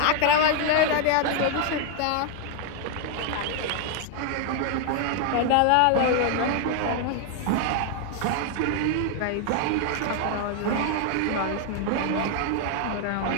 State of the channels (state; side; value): different; both; correlation 0.00